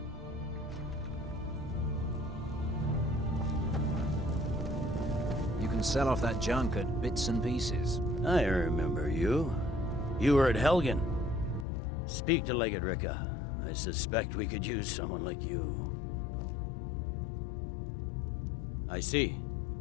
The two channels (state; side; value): drops out; right; at 11.7 s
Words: Sell off that junk at bits and pieces. I remember you. You were at Helgen. Speak to Legate Ricka. I suspect we could use someone like you. I see.